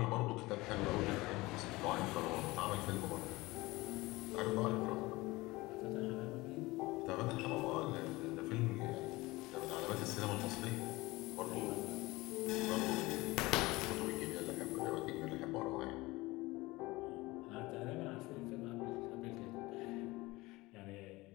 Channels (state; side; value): quieter; right; 20.9 dB